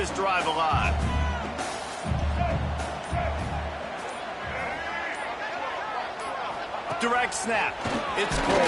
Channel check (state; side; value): identical; both; correlation 1.00